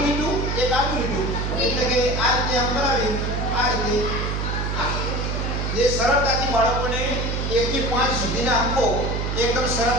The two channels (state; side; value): noise; right; hum, 1 dB below the sound